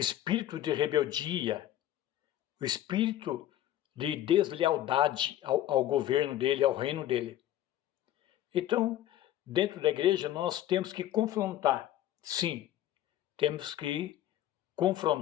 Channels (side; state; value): right; quieter; 12.7 dB